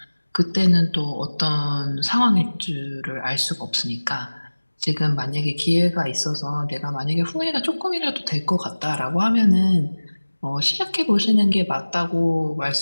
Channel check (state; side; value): inverted; both; correlation -1.00